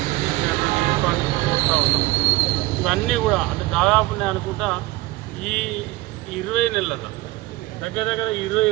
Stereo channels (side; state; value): left; quieter; 19.5 dB